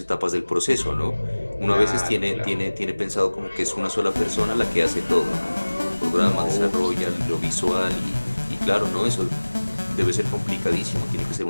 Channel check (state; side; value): inverted; both; correlation -1.00